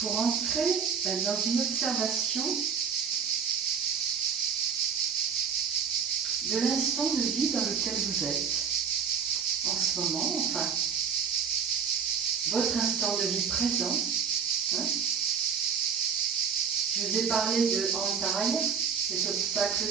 entrer dans une observation de l'instant de vie dans lequel vous êtes en ce moment, enfin, votre instant de vie présent. Je vous ai parlé de Antaya, des obstacles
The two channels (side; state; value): left; quieter; 6.8 dB